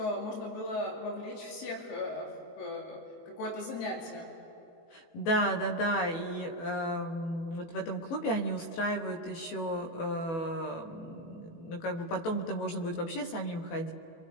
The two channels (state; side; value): late; right; 18 ms